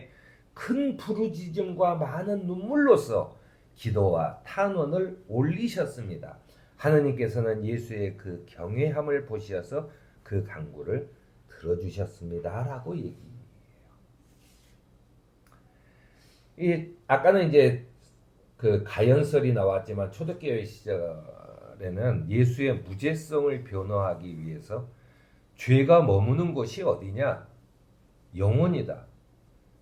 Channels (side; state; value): both; identical; correlation 1.00